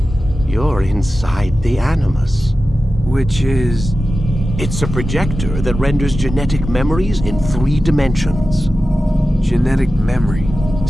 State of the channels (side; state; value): both; normal; correlation 0.94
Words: You're inside the Animus. Which is... It's a projector that renders genetic memories in 3 dimensions. genetic memory.